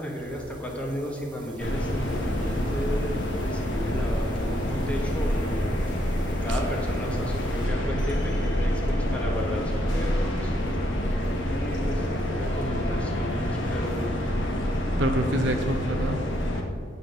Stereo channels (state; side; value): normal; both; correlation 0.75